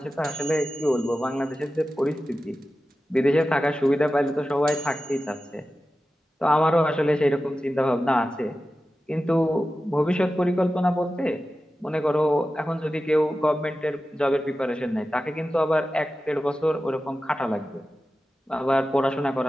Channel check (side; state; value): both; normal; correlation 0.93